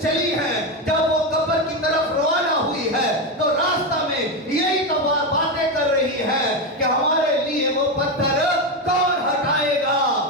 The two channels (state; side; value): normal; both; correlation 0.12